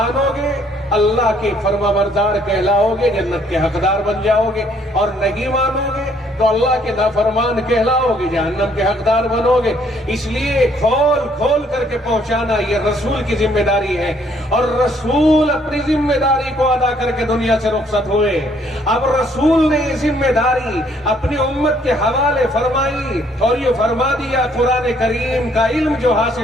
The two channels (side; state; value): both; normal; correlation 0.65